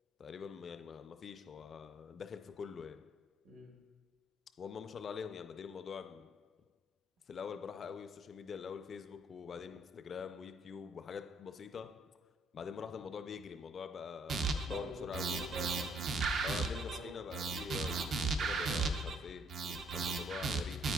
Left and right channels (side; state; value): both; normal; correlation 0.65